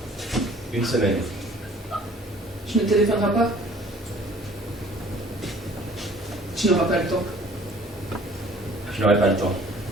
Une semaine. Tu ne téléphoneras pas? Tu n'auras pas le temps. Je n'aurai pas le temps.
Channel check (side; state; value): both; normal; correlation 0.53